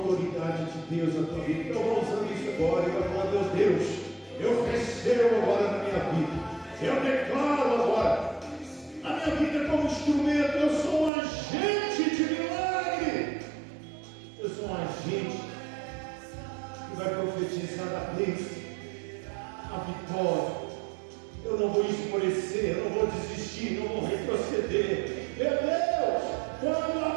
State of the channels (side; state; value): left; drops out; at 11.1 s